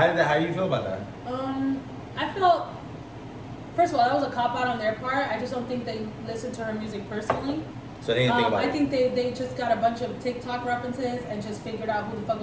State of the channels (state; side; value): identical; both; correlation 1.00